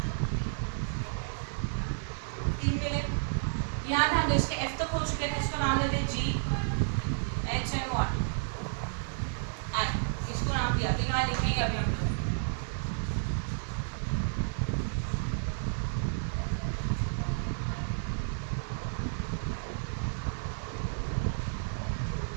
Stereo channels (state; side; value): silent; left; 57 dB below the other